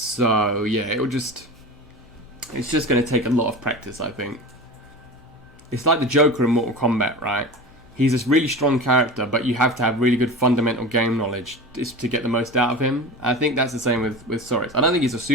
yeah, it's just going to take a lot of practice, I think. It's like the Joker in Mortal Kombat, right? He's this really strong character, but you have to have really good fundamental game knowledge to get the most out of him. I think that's the same with Soriz. I don't think he's a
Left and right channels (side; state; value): left; noise; hum, 27 dB below the sound